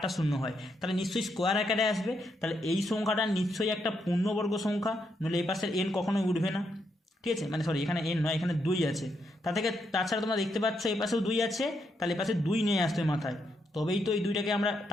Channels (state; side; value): normal; both; correlation 0.79